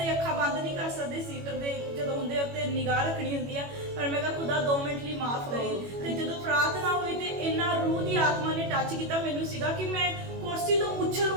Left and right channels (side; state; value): left; late; 21 ms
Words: ਅੱਖਾਂ ਬੰਦ ਨਹੀਂ ਕਰ ਸਕਦੇ, ਸੀਟਰ ਦੇ ਜਦੋਂ ਹੁੰਦੇ ਉੱਤੇ ਨਿਗਾਹ ਰੱਖਣੀ ਹੁੰਦੀ ਆ, ਪਰ ਮੈਂ ਕਿਹਾ ਖੁਦਾ 2 ਮਿੰਟ ਲਈ ਮਾਫ ਕਰੀ। ਤੇ ਜਦੋਂ ਪ੍ਰਾਰਥਨਾ ਹੋਈ ਤੇ ਇੰਨਾ ਰੂਹ ਦੀ ਆਤਮਾ ਨੇ ਟੱਚ ਕੀਤਾ, ਮੈਨੂੰ ਸੀਗਾ ਕਿ ਮੈਂ ਕੁਰਸੀ ਤੋਂ ਉਛਲ